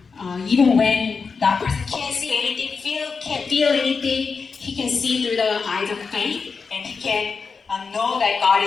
even when that person can't see anything, can't feel anything, he can see through the eyes of faith, and he can know that God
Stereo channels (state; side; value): quieter; right; 5.1 dB